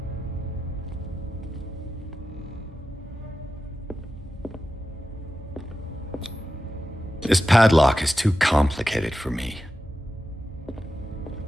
This padlock is too complicated for me.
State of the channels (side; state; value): both; normal; correlation 0.92